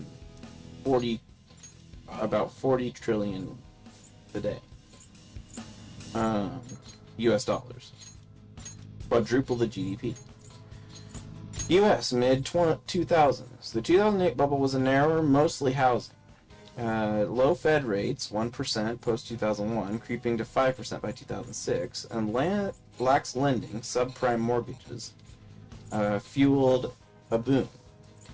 About 40 trillion today. US dollars. Quadruple the GDP. US mid-2000s. The 2008 bubble was a narrower, mostly housing. Low Fed rates, 1% post-2001, creeping to 5% by 2006, and lax lending, subprime mortgages, fueled a boom.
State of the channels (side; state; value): both; identical; correlation 1.00